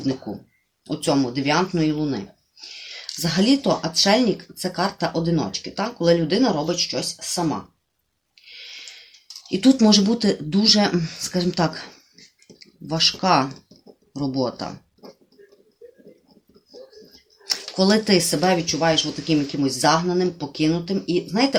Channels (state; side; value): identical; both; correlation 1.00